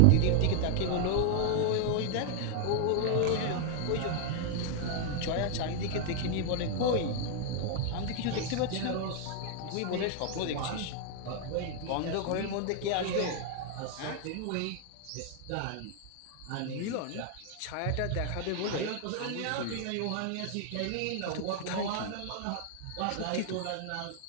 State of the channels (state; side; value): different; both; correlation 0.00